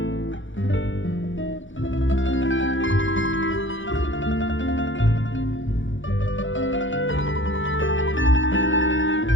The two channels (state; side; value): late; right; 0.56 ms